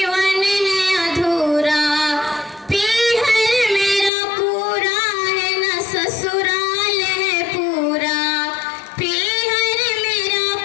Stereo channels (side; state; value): right; drops out; at 4.1 s